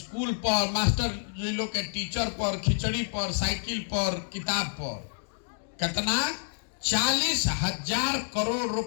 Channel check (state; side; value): silent; right; digital silence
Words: पर, मास्टर लोग के टीचर पर, खिचड़ी पर, साइकिल पर, किताब पर। कितना? 40,000 करोड़